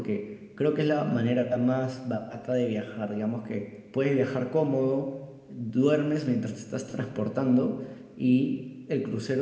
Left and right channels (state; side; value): identical; both; correlation 1.00